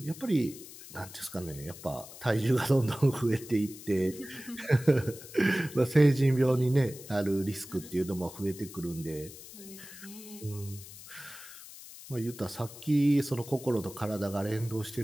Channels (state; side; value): noise; left; hiss, 16 dB below the sound